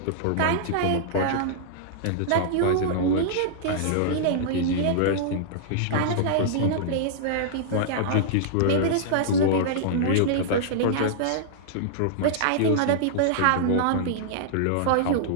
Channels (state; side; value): different; both; correlation -0.02